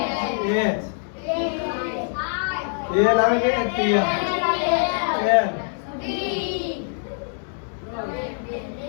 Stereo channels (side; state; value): right; silent; digital silence